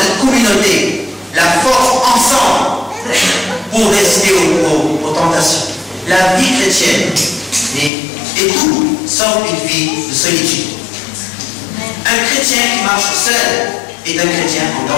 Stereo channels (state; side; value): drops out; right; at 7.9 s